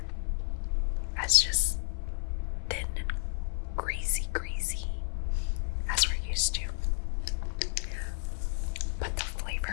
as just thin and greasy as we're used to. But the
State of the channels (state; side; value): silent; right; 57 dB below the other